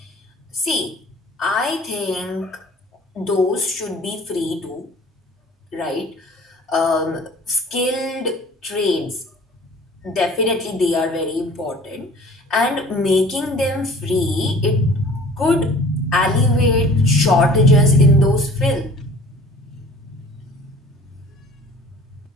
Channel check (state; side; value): normal; both; correlation 0.48